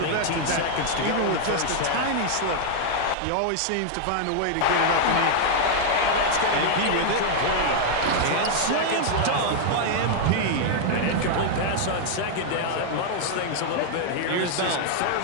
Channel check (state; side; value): different; both; correlation -0.01